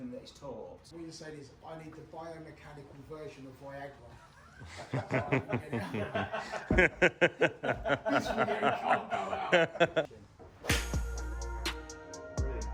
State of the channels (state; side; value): identical; both; correlation 1.00